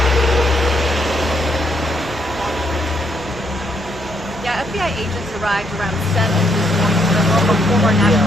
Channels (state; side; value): normal; both; correlation 0.74